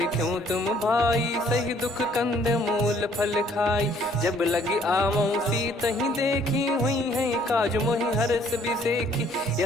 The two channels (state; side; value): normal; both; correlation 0.62